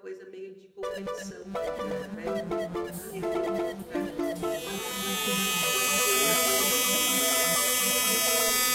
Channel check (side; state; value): both; identical; correlation 1.00